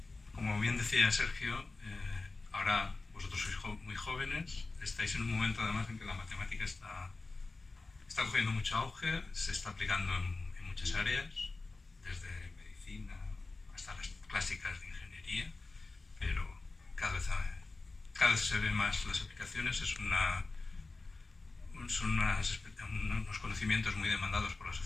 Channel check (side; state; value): right; quieter; 3.5 dB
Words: como bien decía Sergio, ahora vosotros sois muy jóvenes, estáis en un momento además en que la matemática está cogiendo mucho auge, se está aplicando en muchas áreas, desde medicina hasta las clásicas de ingeniería, pero cada vez se ven más las aplicaciones, son unos conocimientos muy demandados por la